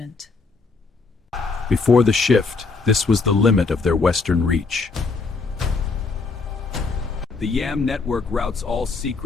Before the shift, this was the limit of their western reach. The YAM network routes all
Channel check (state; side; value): quieter; right; 4.2 dB